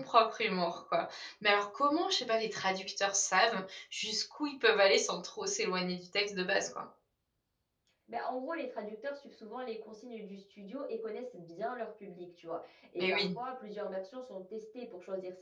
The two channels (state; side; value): identical; both; correlation 1.00